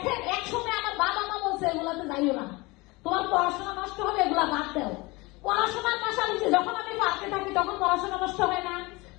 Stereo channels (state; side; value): quieter; right; 23.8 dB